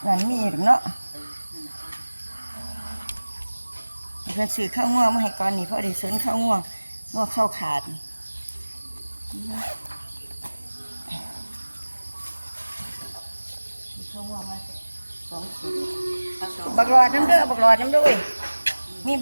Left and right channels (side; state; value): both; inverted; correlation -1.00